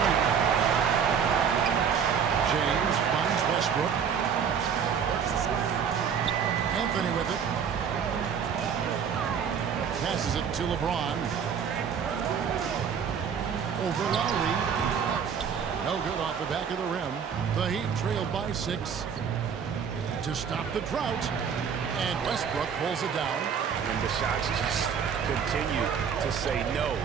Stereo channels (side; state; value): left; quieter; 7.2 dB